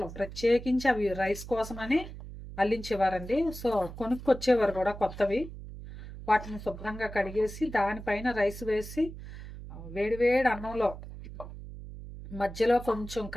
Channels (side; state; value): right; noise; hum, 12 dB below the sound